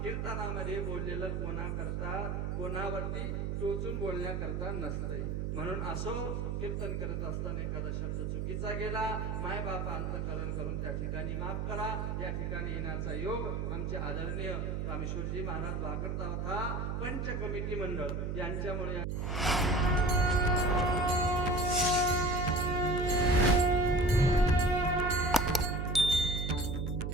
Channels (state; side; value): noise; right; hum, 1 dB below the sound